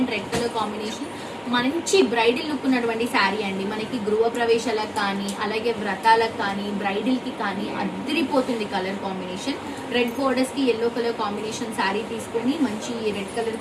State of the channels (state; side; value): identical; both; correlation 1.00